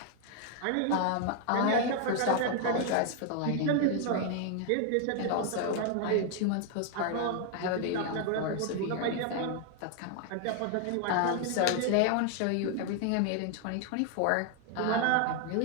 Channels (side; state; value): both; different; correlation 0.00